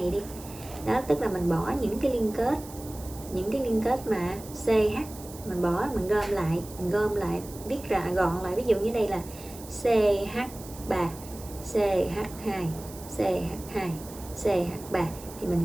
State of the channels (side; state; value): right; noise; hiss, 17 dB below the sound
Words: đi. Đó, tức là mình bỏ những cái liên kết mà CH mình bỏ, mình gom lại viết ra gọn lại. Ví dụ như đây là CH3, CH2, CH2, CH3 thì